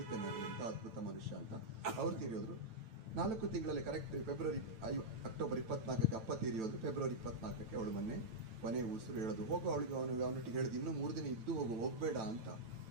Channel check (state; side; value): late; left; 9.1 ms